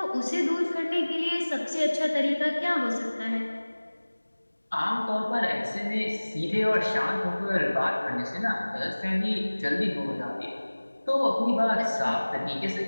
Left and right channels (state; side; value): inverted; both; correlation -1.00